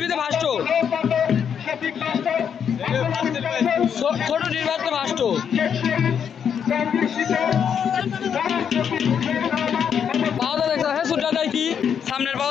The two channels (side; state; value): right; quieter; 7.8 dB